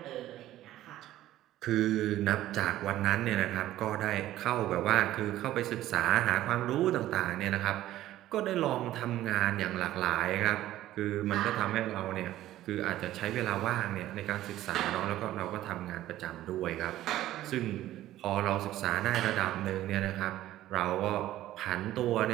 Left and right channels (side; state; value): left; quieter; 14.1 dB